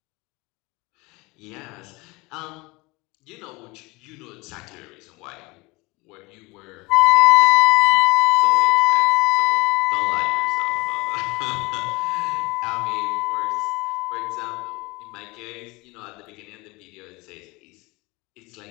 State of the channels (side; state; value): right; quieter; 24.2 dB